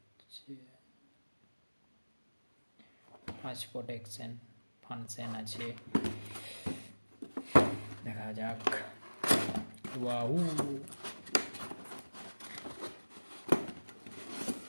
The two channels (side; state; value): both; inverted; correlation -1.00